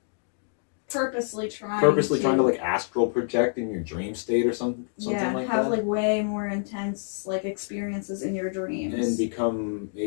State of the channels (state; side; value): silent; right; digital silence